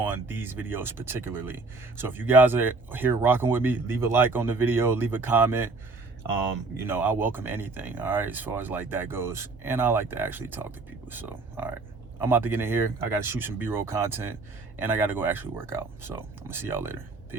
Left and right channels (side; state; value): left; quieter; 3.7 dB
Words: these videos particularly. So if you guys are here rocking with me, leave a like on the video, leave a comment. You know, I welcome anything, all right, as far as like that goes. And I like to actually talk to people. So, all right, I'm about to get in here. I got to shoot some B-roll content, and I got to go actually work out. So I'm gonna see y'all later.